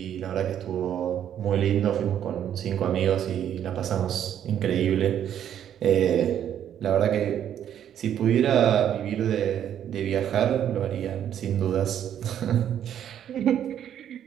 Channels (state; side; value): quieter; left; 9.9 dB